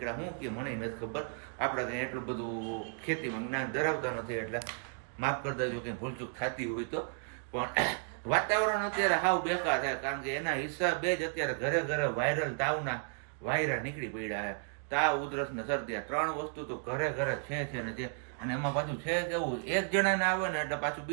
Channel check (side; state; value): left; silent; 55 dB below the other